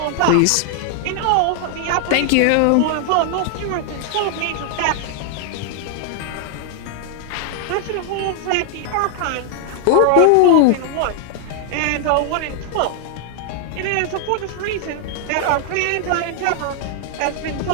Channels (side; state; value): both; different; correlation 0.00